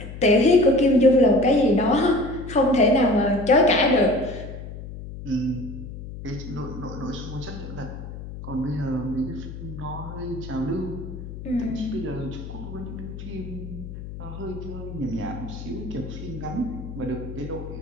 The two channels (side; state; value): left; noise; hum, 11 dB below the sound